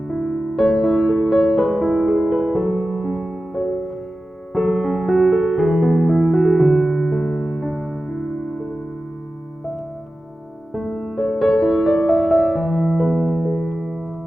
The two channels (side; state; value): both; normal; correlation 0.94